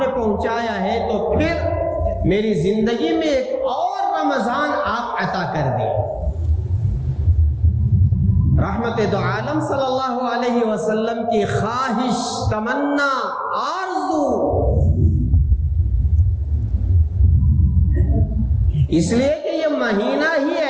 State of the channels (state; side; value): identical; both; correlation 1.00